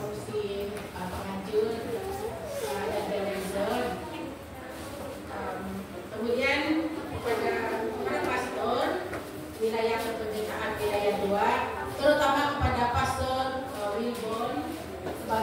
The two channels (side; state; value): both; identical; correlation 1.00